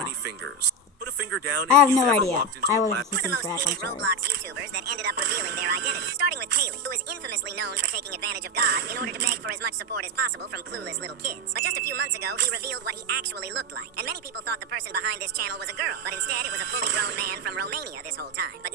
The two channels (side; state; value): both; normal; correlation 0.11